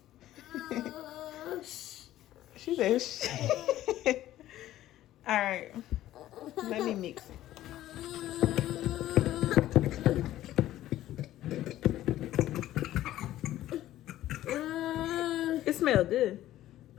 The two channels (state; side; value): quieter; right; 13.9 dB